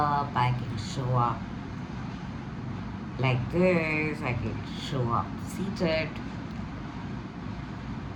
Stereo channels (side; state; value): both; identical; correlation 1.00